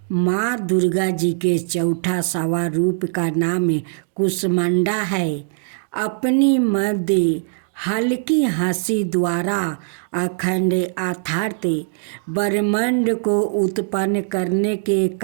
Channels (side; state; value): left; silent; digital silence